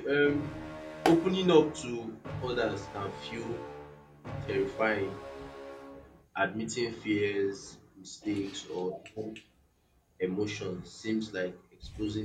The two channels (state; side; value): identical; both; correlation 1.00